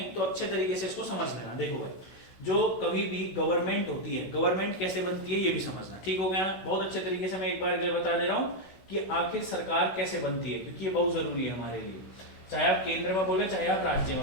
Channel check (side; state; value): right; late; 16 ms